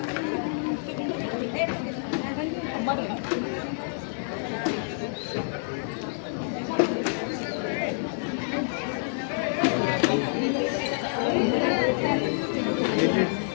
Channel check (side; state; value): right; silent; digital silence